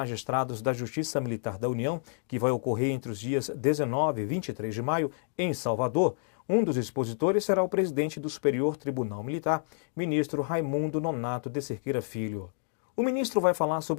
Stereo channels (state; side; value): silent; right; digital silence